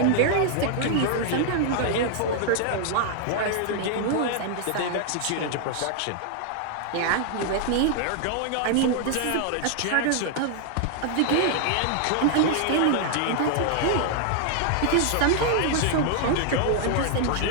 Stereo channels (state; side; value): different; both; correlation 0.00